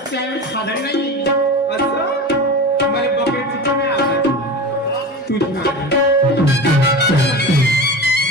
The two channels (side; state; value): both; normal; correlation 0.29